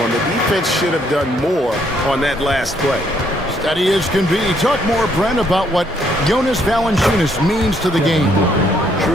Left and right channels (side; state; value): both; normal; correlation 0.69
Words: the defense should have done more on that last play. Steady as can be. Talk more, Brent, about what Jonas Valanciunas means to the game.